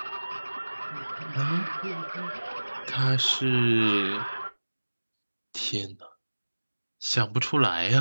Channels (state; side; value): inverted; both; correlation -1.00